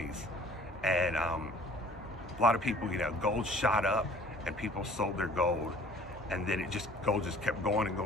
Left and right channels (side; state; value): both; normal; correlation 0.51